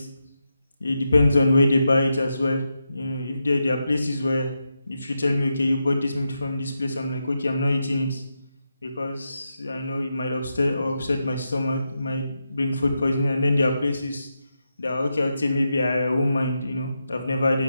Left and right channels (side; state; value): both; inverted; correlation -0.87